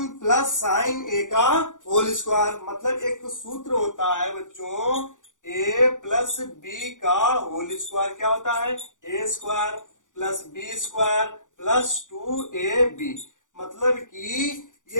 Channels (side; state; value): right; late; 0.87 ms